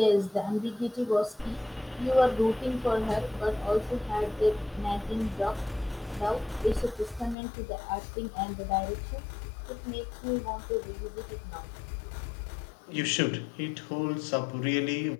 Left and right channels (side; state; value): right; drops out; at 7.4 s